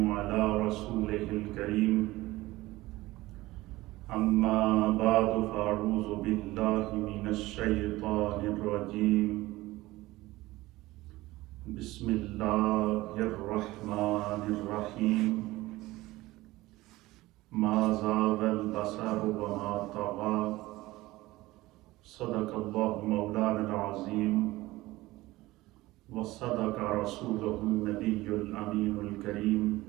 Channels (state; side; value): quieter; left; 18.7 dB